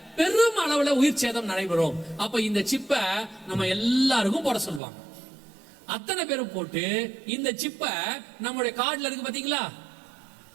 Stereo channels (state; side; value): drops out; left; at 4.8 s